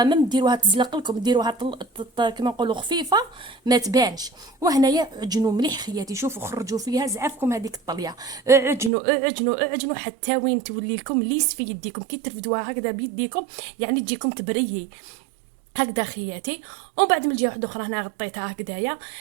ما ديروها تزلق لكم، ديروها كما نقولوا خفيفه ما تبانش. وهنايا عجنوا مليح خياتي، شوفوا خرجوا فيها زعافكم هذيك الطليه، اعجنوا حتى وين تولي لكم ليس في يديكم، كي ترفدوها هكذا بيديكم يعني تجيكم تبريي هكذا خياتي. ومن بعد من الجهه واحده اخرى هنا غطيتها هكذايا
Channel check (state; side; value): drops out; left; at 8.9 s